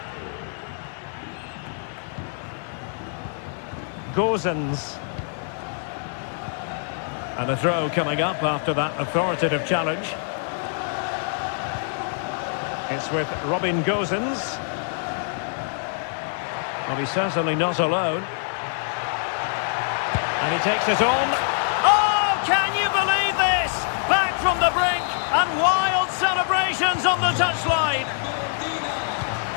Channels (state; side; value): silent; right; 61 dB below the other